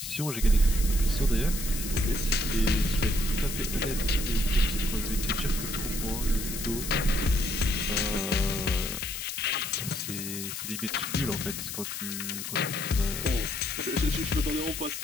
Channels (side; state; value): left; noise; hiss, 6 dB below the sound